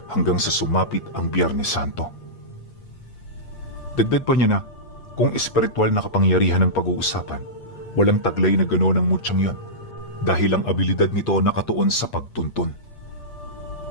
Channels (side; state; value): right; late; 8.5 ms